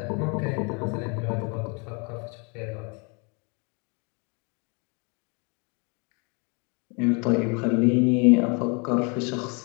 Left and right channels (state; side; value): quieter; right; 33.3 dB